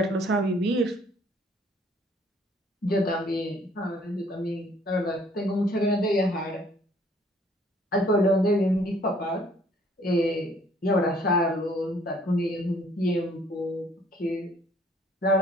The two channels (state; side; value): normal; both; correlation 0.60